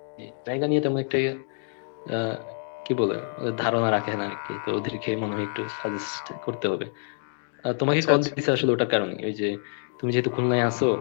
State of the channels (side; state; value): right; silent; digital silence